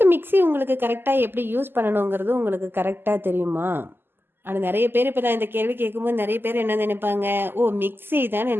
மிக்சி உங்களுக்கு கரெக்டாக எப்படி யூஸ் பண்ணணுங்கிறது உங்களுக்கு கரெக்டாக தெரியுமா? ஆனால் நிறைய பேர் இப்போ நான் இந்த கேள்வி கேட்கும்போது நிறைய பேர் என்ன நினைப்பாங்க, ஓ மிக்சி தானே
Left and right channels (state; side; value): late; left; 0.10 ms